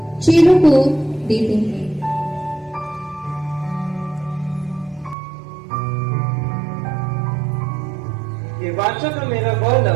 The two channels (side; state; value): left; drops out; at 5.2 s